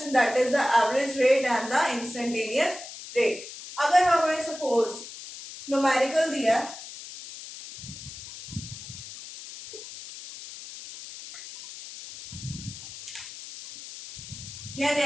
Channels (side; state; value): left; noise; hiss, 13 dB below the sound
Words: that is the average rate and the instantaneous rate. अगर हमें सपोज न्यूमेरिकल दिया या